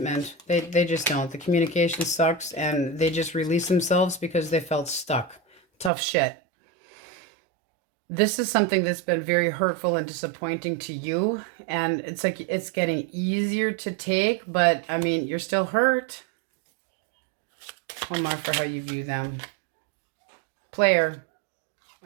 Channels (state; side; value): drops out; left; at 5.9 s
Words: They just don't. The communication sucks and they just release themselves because they felt stuck. Tough shit. This is something that's been very hurtful and disappointing to you. And it's like it's getting easier to take, but I mean, you're still hurt. One more for how you view them. Player.